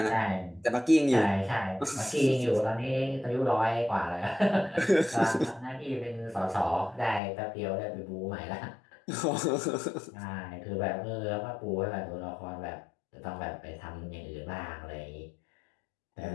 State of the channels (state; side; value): drops out; right; at 7.2 s